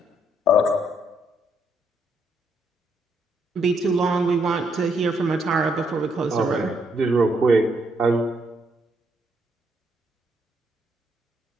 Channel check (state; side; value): normal; both; correlation 0.74